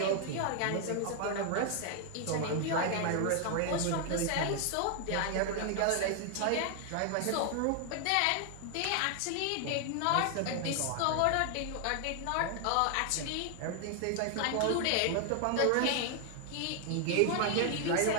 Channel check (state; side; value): different; both; correlation 0.00